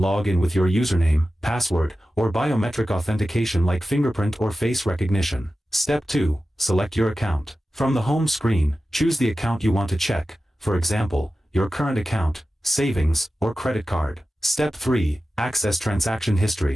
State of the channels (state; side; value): normal; both; correlation 0.94